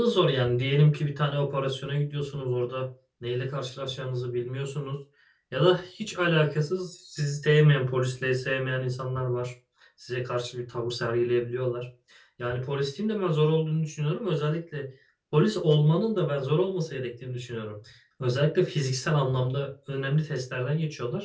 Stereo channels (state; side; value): identical; both; correlation 1.00